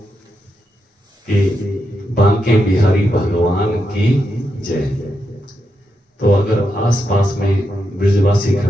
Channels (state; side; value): normal; both; correlation 0.84